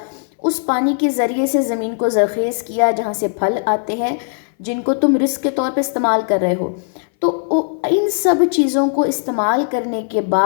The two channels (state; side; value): silent; right; 60 dB below the other